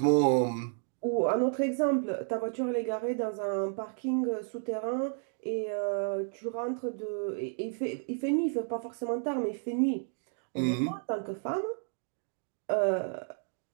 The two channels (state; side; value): silent; left; 57 dB below the other